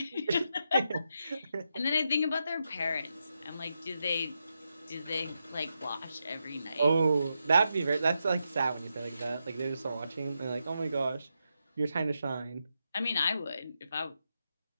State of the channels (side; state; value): both; inverted; correlation -0.85